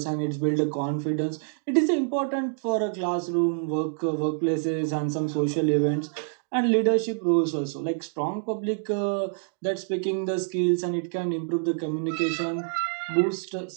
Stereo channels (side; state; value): left; silent; digital silence